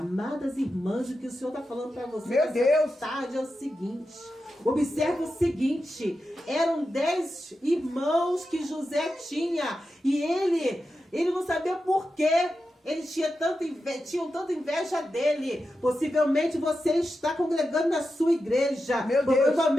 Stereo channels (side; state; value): both; normal; correlation 0.90